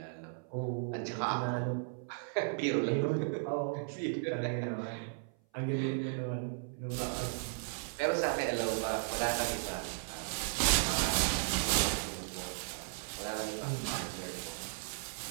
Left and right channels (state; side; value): silent; left; 54 dB below the other